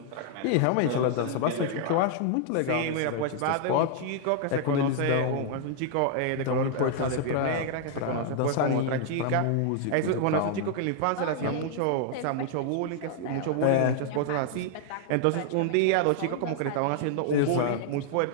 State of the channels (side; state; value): both; different; correlation -0.01